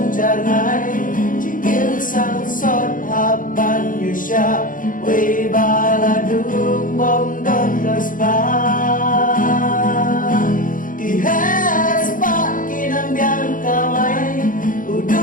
jarngay Jigil sang sot hapan yu siya Way baladung bongdon kaspa Kihes pa kinambiang kamay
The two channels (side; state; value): right; late; 0.39 ms